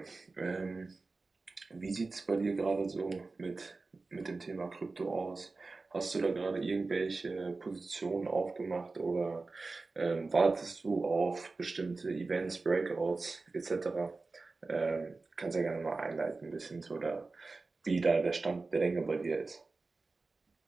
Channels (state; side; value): quieter; left; 3.7 dB